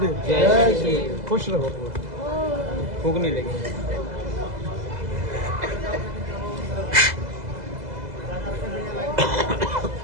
जय श्री। खुश रहो। भूख नहीं लगी।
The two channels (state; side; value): late; left; 2.0 ms